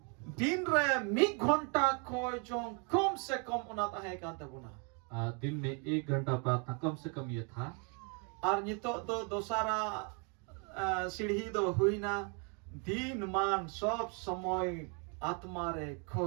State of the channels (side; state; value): left; quieter; 36.1 dB